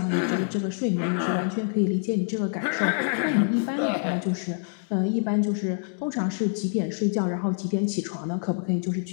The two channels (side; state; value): right; silent; digital silence